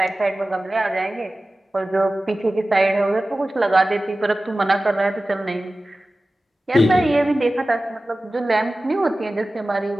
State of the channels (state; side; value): normal; both; correlation 0.96